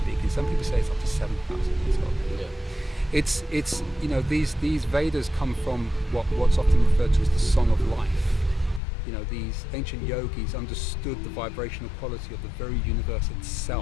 Some people say it's up to 7,000 years old. Yeah. It's these Vedas come from what's often referred to as the Song of Life. These ancient yogis understood the vibrational quality of the very universe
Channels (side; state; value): right; drops out; at 8.8 s